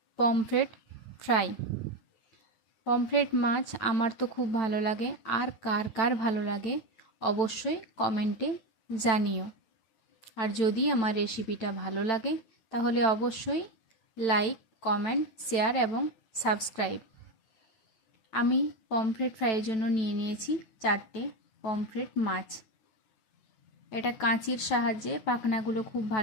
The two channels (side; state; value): right; late; 9.0 ms